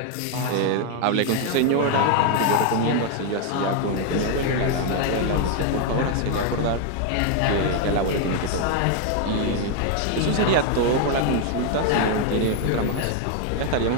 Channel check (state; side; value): different; both; correlation 0.01